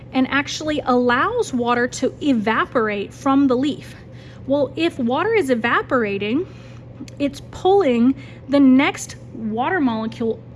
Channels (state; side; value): identical; both; correlation 1.00